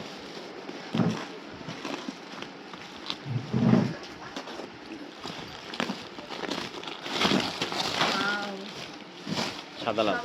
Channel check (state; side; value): identical; both; correlation 1.00